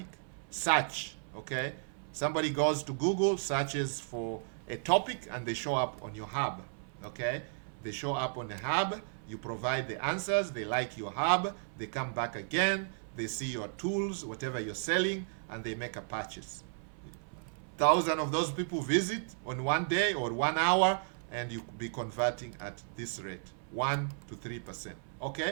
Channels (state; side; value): silent; left; 55 dB below the other